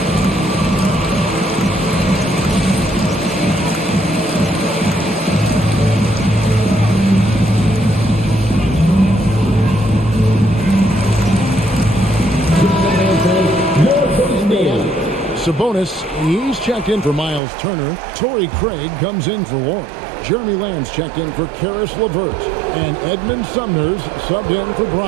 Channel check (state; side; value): drops out; left; at 17.4 s